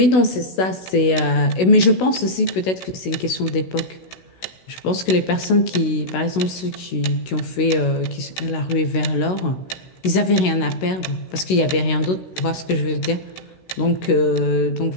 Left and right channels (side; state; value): right; late; 16 ms